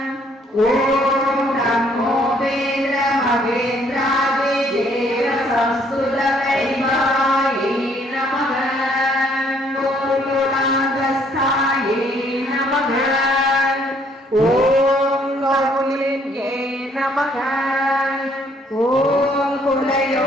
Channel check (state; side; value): normal; both; correlation 0.65